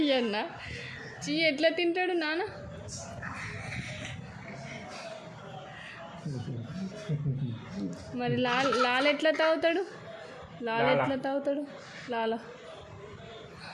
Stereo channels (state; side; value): identical; both; correlation 1.00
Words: చీ ఎట్లా తింటాడు నాన్న? మరి లాల ఎట్లా తాగుతాడు? లాల ఎట్లా తాగుతాడు? లాల